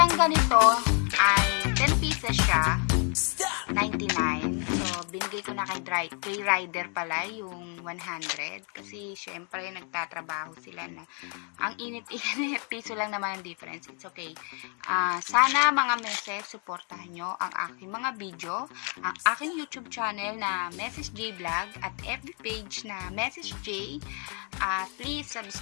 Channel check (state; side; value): quieter; right; 38.7 dB